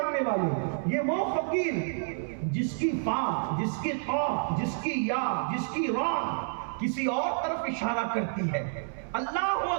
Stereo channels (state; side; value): silent; left; 58 dB below the other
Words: والے، یہ وہ فقیر جس کی فا، جس کی قاف، جس کی یا، جس کی را کسی اور طرف اشارہ کرتی ہے۔ اللہ